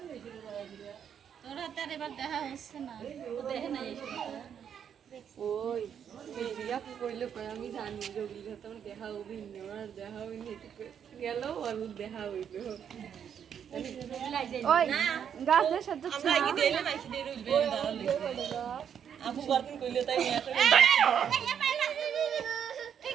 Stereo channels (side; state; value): left; quieter; 8.3 dB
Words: তোর হাতে আর এবার দেখা হচ্ছে না, ও দেখে নাই ওই মেরিয়া কইলো কই আমি জানি জগিল তোমার দেখা হবি না আর দেখা হবি না গেল আর দেখা হইলো ওই গাছের সাথে আমরা কি দেইলে নাকি দেই রইবে দাঁড়ালে আপু বারদিন কইলো তাই নিয়ে